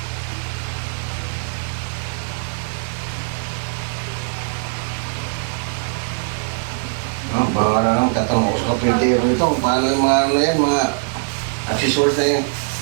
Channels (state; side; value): silent; left; 65 dB below the other